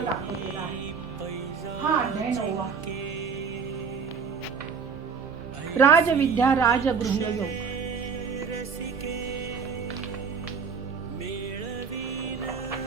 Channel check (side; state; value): left; quieter; 5.8 dB